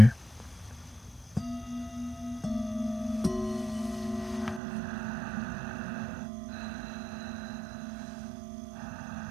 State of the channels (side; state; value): left; drops out; at 4.6 s